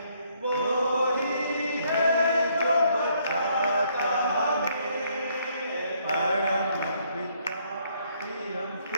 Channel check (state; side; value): inverted; both; correlation -0.69